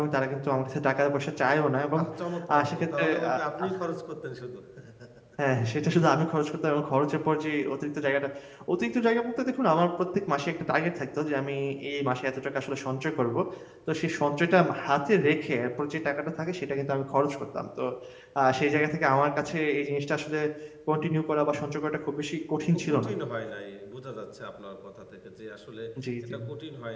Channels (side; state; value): both; identical; correlation 1.00